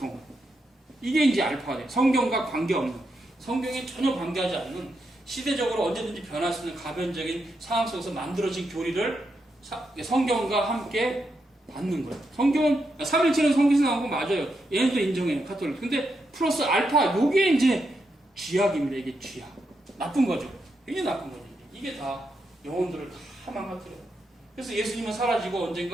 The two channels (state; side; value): normal; both; correlation 0.83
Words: 이게 이제 알파가 돼요. 성경과 관계없는 성경에 전혀 관계하지 않는 시대적으로 언제든지 변할 수 있는 가변적인 상황 속에서 만들어진 교리를 성경과 함께 받는 거예요. 성경은 삼일체는 성경에서 나온 거 맞아요. 얘네도 인정해요. 가톨릭. 근데 플러스 알파 요게 이제 쥐약입니다. 이게 쥐약. 나쁜 거죠. 이게 나쁜 거죠. 이게 다 영혼들을 다 망가뜨려요. 그래서 예수님은 사라지고